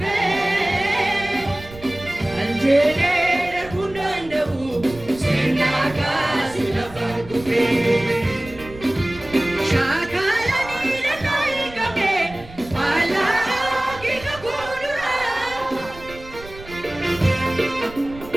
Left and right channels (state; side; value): noise; right; rumble, 17 dB below the sound